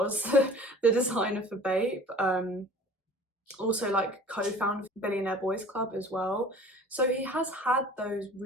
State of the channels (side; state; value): both; normal; correlation 0.45